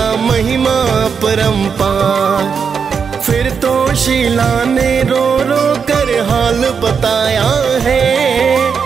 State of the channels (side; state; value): left; quieter; 6.3 dB